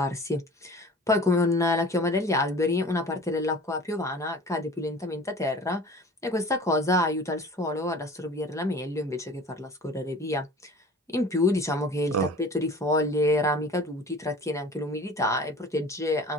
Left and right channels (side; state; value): both; normal; correlation 0.43